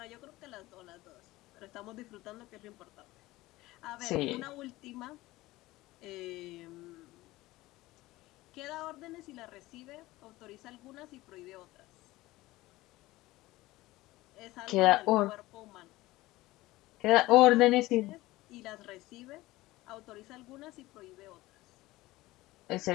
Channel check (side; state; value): right; quieter; 18.6 dB